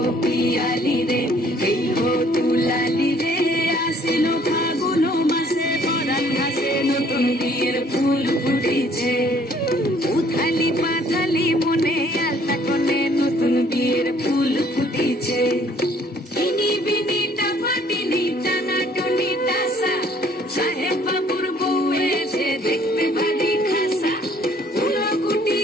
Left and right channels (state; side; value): normal; both; correlation 0.60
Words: পিয়ালি রে, এই হো দুলালি রে। আশ্বিন ফাগুন মাসে পরাণ ঘাসে নতুন বিয়ের ফুল ফুটিছে। উথালি পাথালি মনে আলতা কোণে নতুন বিয়ের ফুল ফুটিছে। ইনি বিনি টাপাটিনি টানা টুনি টাসা, সাহেব বাবুর বউ এসে দেখতে ভারী খাসা।